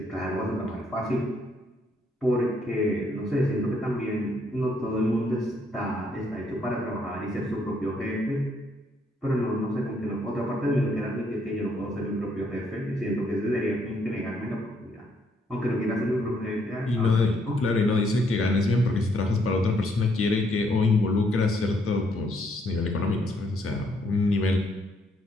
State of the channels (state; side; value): normal; both; correlation 0.71